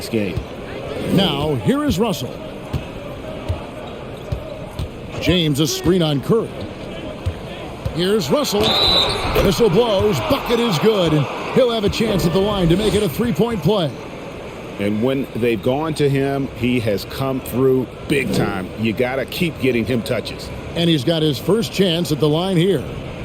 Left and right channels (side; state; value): both; identical; correlation 1.00